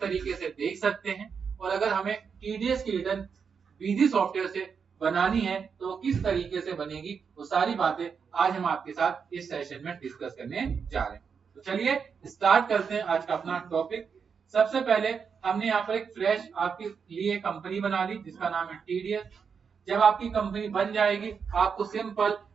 से देख सकते हैं, और अगर हमें टीडीएस की रिटर्न बिजी सॉफ्टवेयर से बनानी है तो वो किस तरीके से बनेगी, वो सारी बातें आज हम आपके साथ इस सेशन में डिस्कस करने जा रहे हैं। तो चलिए स्टार्ट करते हैं आज का अपना टॉपिक। सबसे पहले हमने यहाँ पर एक फ्रेश आपके लिए कंपनी बना ली जिसका नाम है टीडीएस। जब आपकी कंपनी बन जाएगी आपको सिंपल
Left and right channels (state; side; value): quieter; left; 6.2 dB